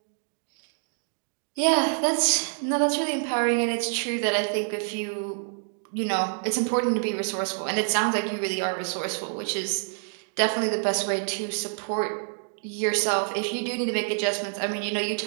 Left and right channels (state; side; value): silent; left; 60 dB below the other